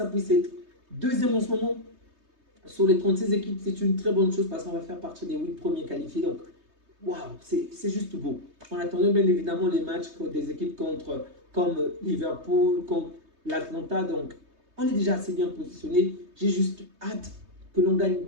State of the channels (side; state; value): left; late; 3.2 ms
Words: puisse être deuxième en ce moment sur les 36 équipes, c'est une très bonne chose parce qu'on va faire partie des 8 premiers qualifiés. Donc, waouh, c'est juste beau. On attendait bien évidemment les matchs des équipes comme Liverpool, comme l'Atlanta. Donc, on est déjà assez bien positionné. J'ai juste hâte que l'on gagne